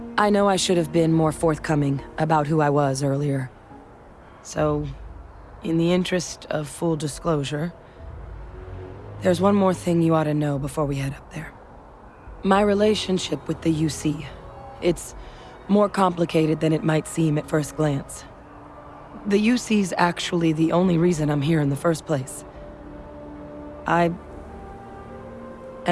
I know I should have been more forthcoming about who I was earlier. So, in the interest of full disclosure, there's one more thing you ought to know before we head up there. My relationship with the UC. It's more complicated than it might seem at first glance. The UC's actually the only reason I'm here in the first place. I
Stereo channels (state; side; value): identical; both; correlation 1.00